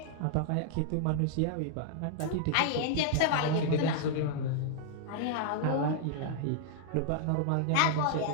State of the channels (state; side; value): different; both; correlation -0.01